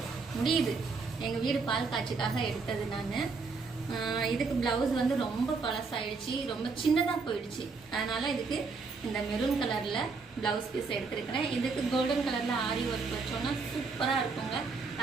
முடியுது. எங்க வீடு பால் காட்சிக்காக எடுத்தது நான். இதுக்கு பிளவுஸ் வந்து ரொம்ப பழசாயிடுச்சு, ரொம்ப சின்னதாக போயிடுச்சு. அதனால இதுக்கு இந்த மெரூன் கலர்ல பிளவுஸ் பீஸ் எடுத்திருக்கிறேன். இதுக்கு கோல்டன் கலர்ல ஆரி ஒர்க் வச்சோம்னா சூப்பரா இருக்குங்க.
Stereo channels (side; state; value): left; quieter; 4.5 dB